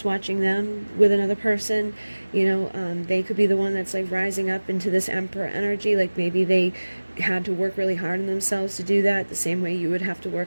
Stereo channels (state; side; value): inverted; both; correlation -1.00